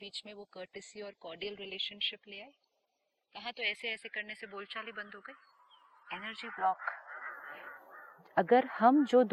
में वो कर्टेसी और कॉर्डियल रिलेशनशिप ले आए। कहा तो ऐसे ऐसे करने से बोलचाल ही बंद हो गई, एनर्जी ब्लॉक। अगर हम जो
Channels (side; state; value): both; identical; correlation 1.00